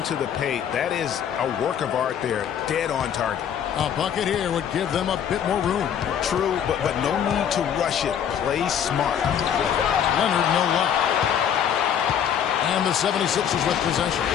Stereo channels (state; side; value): quieter; right; 8.8 dB